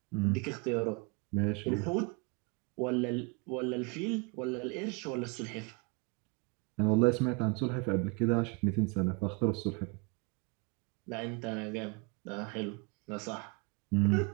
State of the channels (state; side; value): quieter; left; 30.3 dB